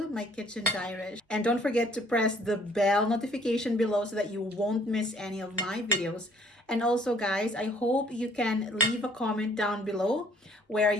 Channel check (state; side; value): normal; both; correlation 0.59